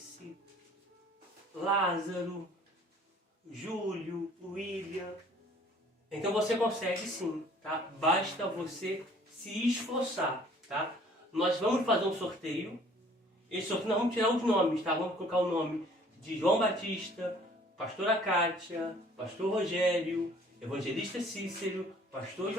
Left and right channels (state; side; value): normal; both; correlation 0.55